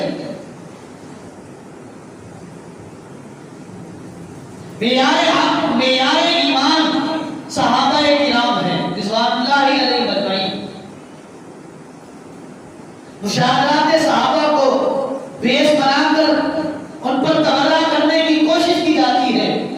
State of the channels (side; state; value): both; identical; correlation 1.00